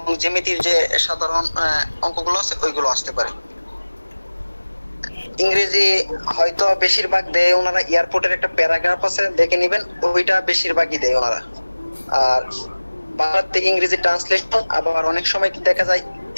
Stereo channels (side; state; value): both; inverted; correlation -1.00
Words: জ্যামিতির যে সাধারণ অঙ্কগুলো আছে ওইগুলো আসতে পারে। ইংরেজি হয়তো বেশিরভাগ দেয় ওনারা, এয়ারপোর্টের একটা প্যারাগ্রাফ আছে দেখে নেবেন, ওইটা বেশিরভাগই দেয় ওনারা। আর বাংলা থেকে ইংরেজি ট্রান্সলেশন, আবার অনেক সময় কি দেখা যায়